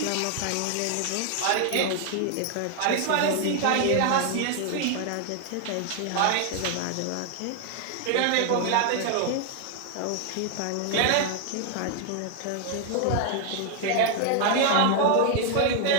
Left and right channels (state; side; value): different; both; correlation 0.00